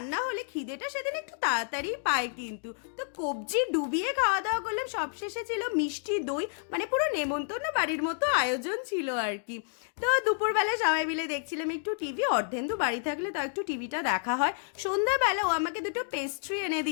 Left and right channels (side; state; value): right; silent; digital silence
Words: হলে খিদেটা সেদিন একটু তাড়াতাড়ি পায় কিন্তু। তো কবজি ডুবিয়ে খাওয়া দাওয়া করলাম। সবশেষে ছিল মিষ্টি দই, মানে পুরো নেমন্তন্ন বাড়ির মতো আয়োজন ছিল আর কি। তো দুপুরবেলা সবাই মিলে দেখছিলাম একটু টিভি। অর্ধেন্দু বাড়ি থাকলে তো একটু টিভিটা দেখা হয়। সন্ধ্যাবেলা ও আমাকে দুটো পেস্ট্রি এনে